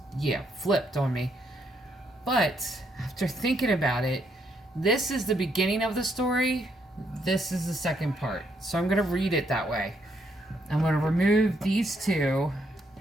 flipped on me. But after thinking about it, this is the beginning of the story. This is the second part. So I'm going to read it that way. I'm going to remove these two,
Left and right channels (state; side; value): normal; both; correlation 0.74